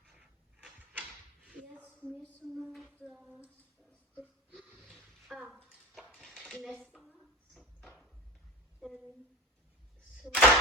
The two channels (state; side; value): normal; both; correlation 0.31